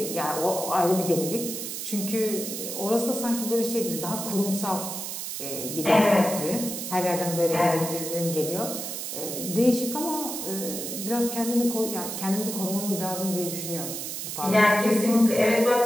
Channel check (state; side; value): noise; right; hiss, 6 dB below the sound